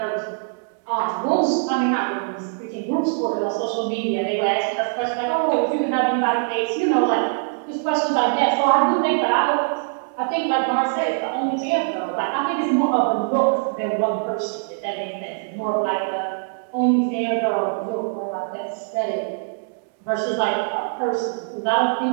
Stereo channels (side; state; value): left; silent; digital silence